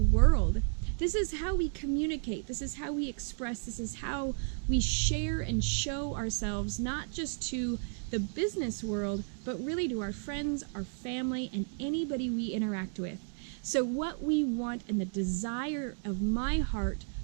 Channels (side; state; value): left; silent; 56 dB below the other